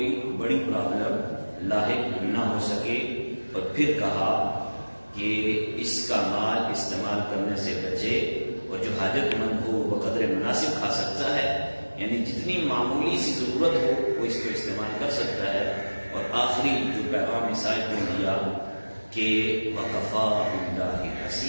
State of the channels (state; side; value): inverted; both; correlation -1.00